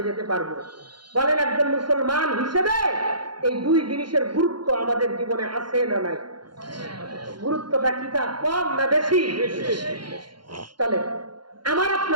যেতে পারবো। বলেন, একজন মুসলমান হিসেবে এই দুই জিনিসের গুরুত্ব আমাদের জীবনে আছে না নাই? গুরুত্বটা কি, তা কম না বেশি? চলে, আমার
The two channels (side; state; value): left; late; 0.72 ms